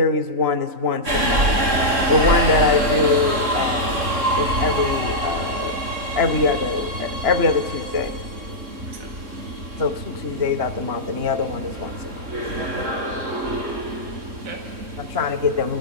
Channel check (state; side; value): late; left; 3.6 ms